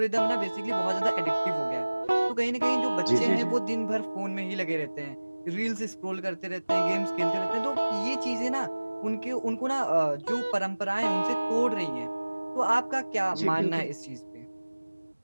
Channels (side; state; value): both; inverted; correlation -1.00